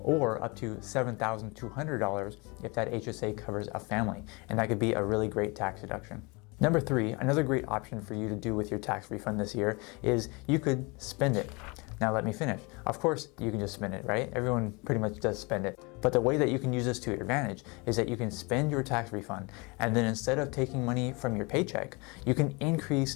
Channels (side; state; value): right; quieter; 28.2 dB